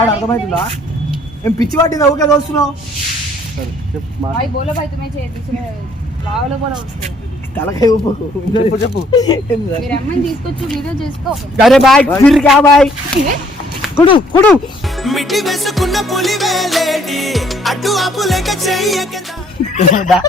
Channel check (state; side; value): normal; both; correlation 0.63